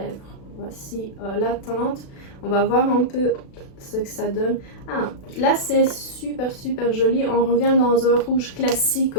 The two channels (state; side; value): late; right; 36 ms